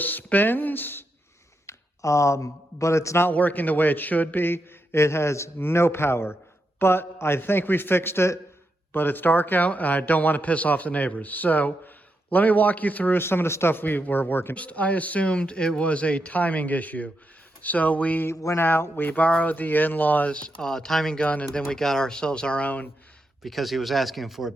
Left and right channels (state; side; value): normal; both; correlation 0.84